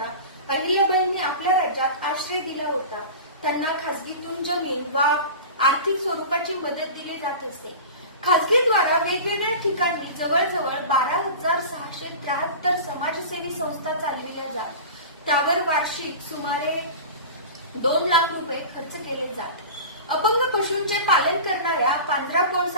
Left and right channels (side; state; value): both; inverted; correlation -0.33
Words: अहिल्याबाईंनी आपल्या राज्यात आश्रय दिला होता. त्यांना खासगीतून जमीन वा आर्थिक स्वरूपाची मदत दिली जात असे. खासगीद्वारा वेगवेगळ्या ठिकाणी जवळजवळ 12,673 समाजसेवी संस्था चालविल्या जात. त्यावर वार्षिक सुमारे 2 लाख रुपये खर्च केले जात. अपंग पशूंचे पालन करणाऱ्या पांढरापोळ